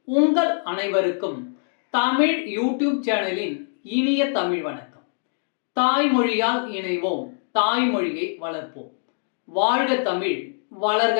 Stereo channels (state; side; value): silent; right; digital silence